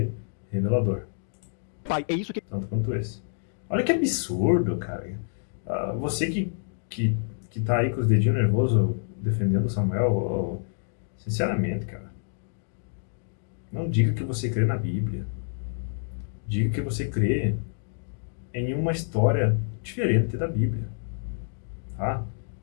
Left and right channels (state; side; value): silent; right; digital silence